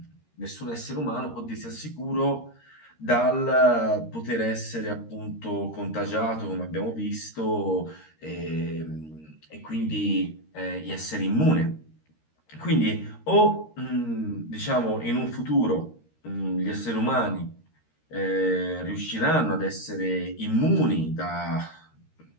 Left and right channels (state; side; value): late; right; 13 ms